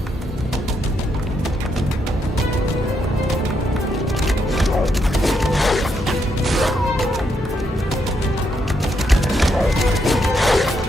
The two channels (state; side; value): normal; both; correlation 0.78